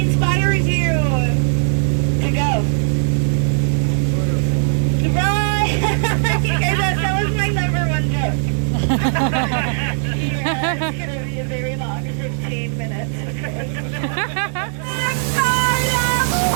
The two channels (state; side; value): silent; left; digital silence